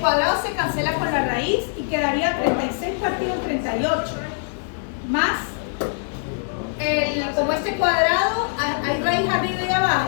se cancela con la raíz y quedaría 36 partido en 38. Más, como este cuadrado, hay raíz arriba y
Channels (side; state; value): right; silent; 64 dB below the other